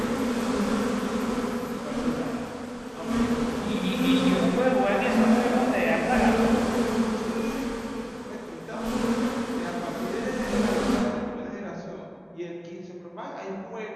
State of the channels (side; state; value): both; identical; correlation 1.00